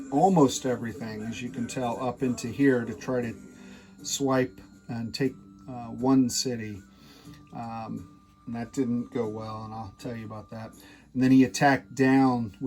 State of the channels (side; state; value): both; identical; correlation 1.00